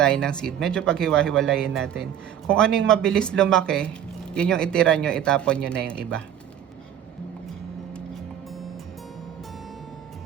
ng seed, medyo paghiwa-hiwalayin natin. Kung ano yung mabilis lumaki, yun yung itira nyo, itapon nyo na yung iba.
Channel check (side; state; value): left; quieter; 10.0 dB